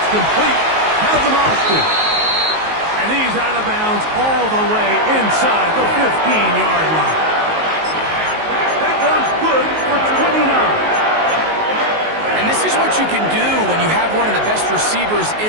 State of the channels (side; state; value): left; late; 19 ms